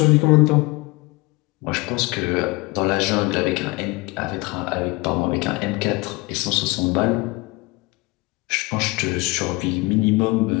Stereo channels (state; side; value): quieter; right; 24.1 dB